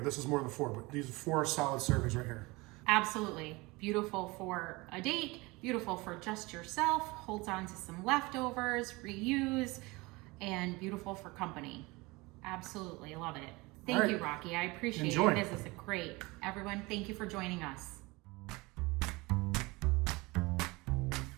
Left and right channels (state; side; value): quieter; left; 23.7 dB